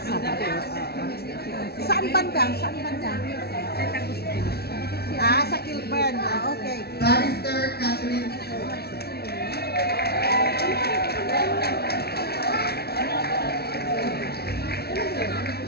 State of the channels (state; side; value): late; right; 0.46 ms